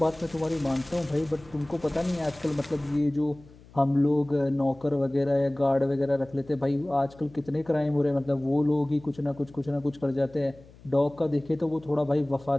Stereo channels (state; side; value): noise; left; hum, 23 dB below the sound